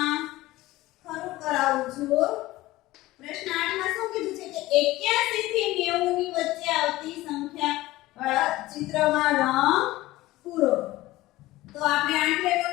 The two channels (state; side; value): quieter; right; 17.7 dB